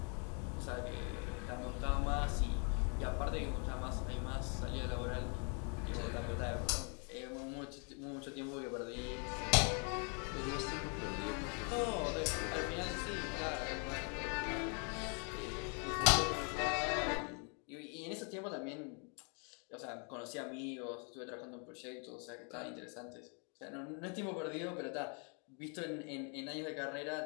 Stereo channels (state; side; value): quieter; right; 38.3 dB